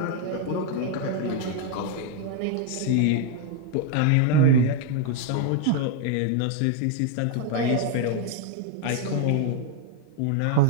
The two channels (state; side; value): different; both; correlation 0.01